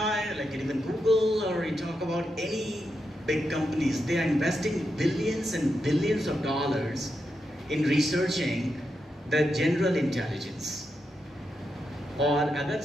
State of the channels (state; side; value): normal; both; correlation 0.85